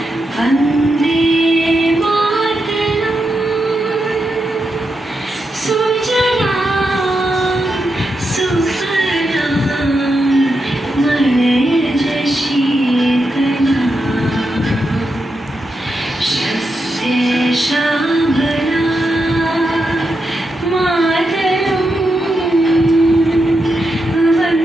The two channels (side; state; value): both; normal; correlation 0.86